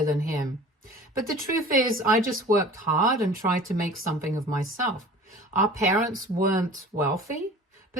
than him. But the truth is, I just worked hard and tried to make something of myself. Our parents weren't wealthy,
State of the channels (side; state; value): both; normal; correlation 0.43